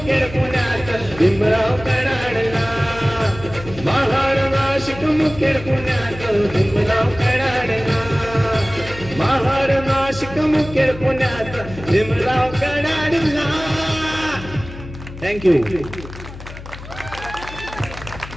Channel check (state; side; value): noise; left; hum, 14 dB below the sound